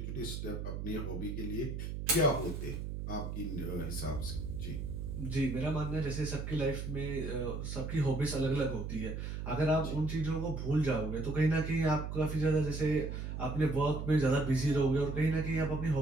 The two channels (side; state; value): right; noise; hum, 5 dB below the sound